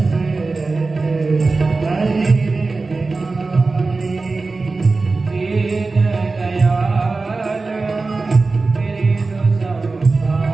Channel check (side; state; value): left; quieter; 3.8 dB